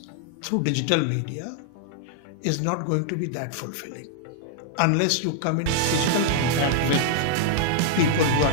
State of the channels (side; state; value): both; different; correlation -0.01